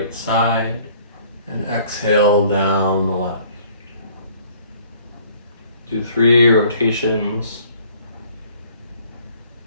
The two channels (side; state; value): both; inverted; correlation -0.57